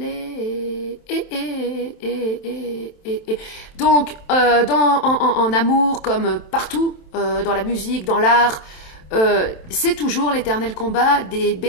Donc, en amour, comme partout, dans la musique, dans l'art, c'est toujours l'éternel combat des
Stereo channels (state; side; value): late; right; 27 ms